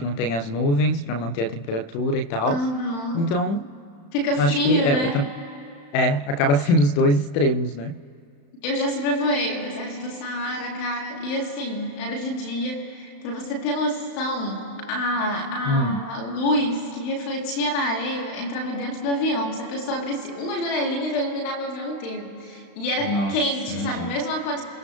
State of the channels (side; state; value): right; late; 35 ms